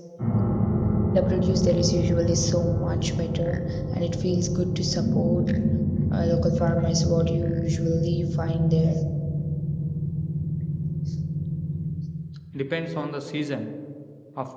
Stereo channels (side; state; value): both; identical; correlation 1.00